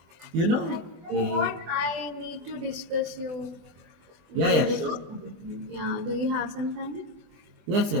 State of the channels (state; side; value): late; left; 24 ms